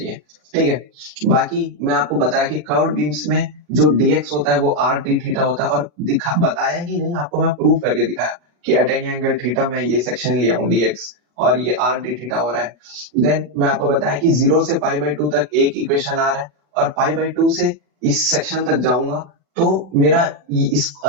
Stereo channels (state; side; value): late; left; 40 ms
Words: ठीक है। बाकी मैं आपको बताया कि कर्व्ड बीम्स में जो dx होता है वो r d थीटा होता है, और बताया ही नहीं, आपको मैं प्रूव करके दिखाया कि एट एनी एंगल थीटा में ये सेक्शन लिया हूं dx और ये r d थीटा हो रहा है। देन मैं आपको बताया कि 0 से पाई बाई 2 तक एक इक्वेशन आ रहा है, और पाई बाई 2 से इस सेक्शन तक जाऊंगा तो मेरा इस